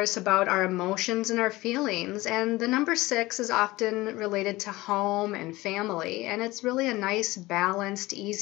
about our emotions and our feelings, and the number 6 is often related to home and family, and it's really a nice, balanced,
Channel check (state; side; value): quieter; right; 19.7 dB